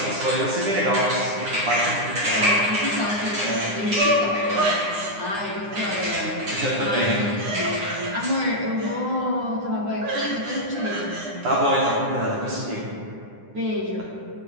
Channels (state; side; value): late; left; 9.8 ms